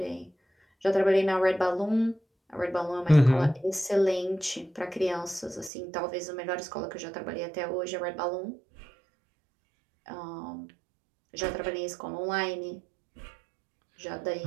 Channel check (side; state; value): left; drops out; at 5.7 s